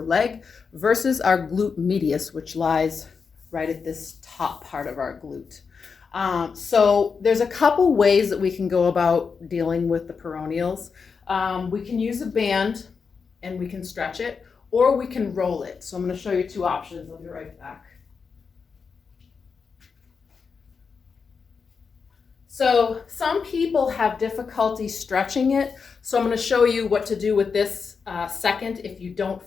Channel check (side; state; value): right; quieter; 5.5 dB